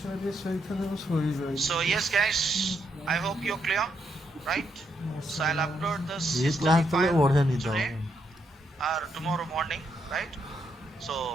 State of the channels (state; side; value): normal; both; correlation 0.78